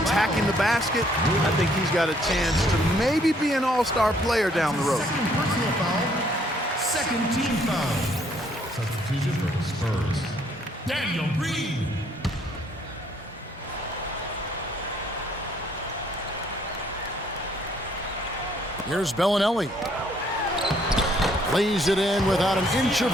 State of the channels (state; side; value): normal; both; correlation 0.66